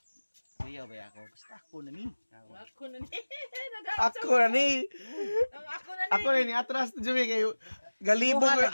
Kuya ba ako? Basta ako na ni. Ako na ni. Ako na ni. Ako na ni. Ako na ni atras Jumi kay galibog yung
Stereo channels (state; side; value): inverted; both; correlation -1.00